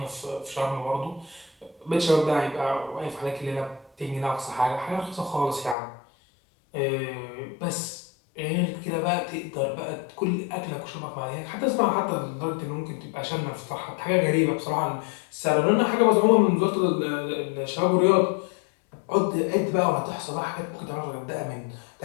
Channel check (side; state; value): right; drops out; at 5.8 s